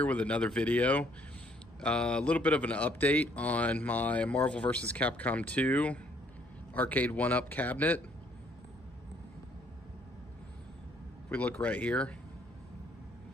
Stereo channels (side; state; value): both; normal; correlation 0.65